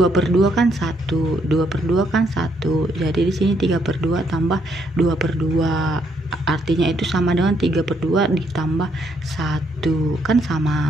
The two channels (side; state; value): both; normal; correlation 0.73